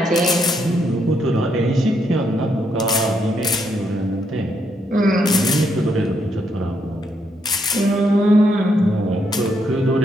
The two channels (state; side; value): normal; both; correlation 0.76